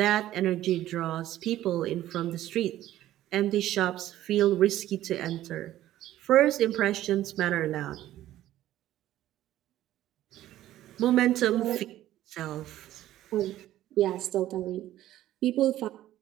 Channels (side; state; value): left; quieter; 13.7 dB